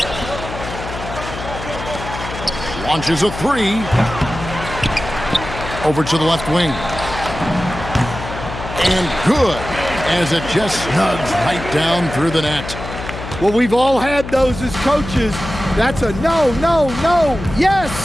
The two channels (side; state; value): left; noise; hum, 9 dB below the sound